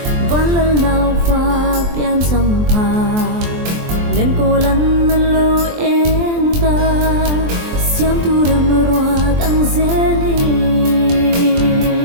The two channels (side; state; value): left; late; 23 ms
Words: walal naw fa pian sampha len ko lan nan lo enda siam tu ramarwa tang zele